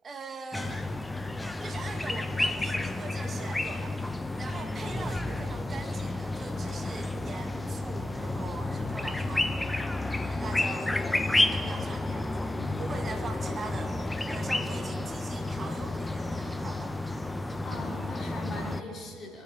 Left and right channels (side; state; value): both; normal; correlation 0.92